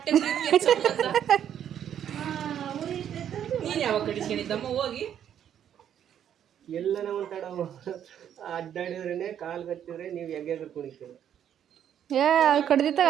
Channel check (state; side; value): quieter; left; 9.7 dB